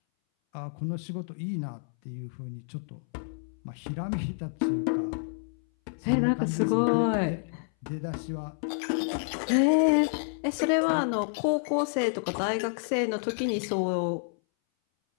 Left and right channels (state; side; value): silent; right; 59 dB below the other